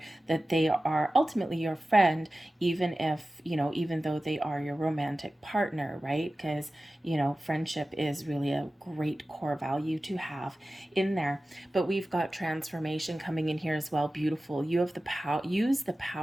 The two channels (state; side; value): normal; both; correlation 0.95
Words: that they are ultimately your friend, even if, even though they are your romantic partner, right? Because, friendship is really a great core value to have in there. But we've got transformation coming in here as well. Beautiful. You have the power, use the